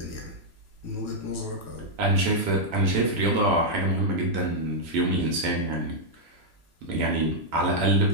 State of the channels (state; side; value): late; left; 3.0 ms